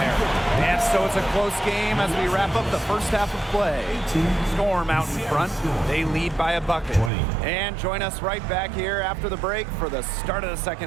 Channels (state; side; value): drops out; left; at 7.1 s